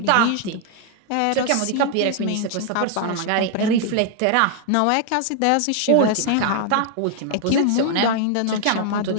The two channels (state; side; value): different; both; correlation 0.00